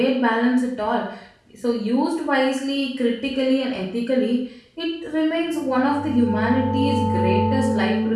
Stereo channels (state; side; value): identical; both; correlation 1.00